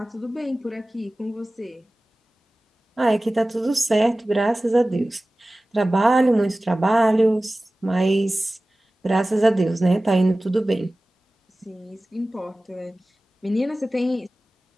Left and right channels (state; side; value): normal; both; correlation 0.97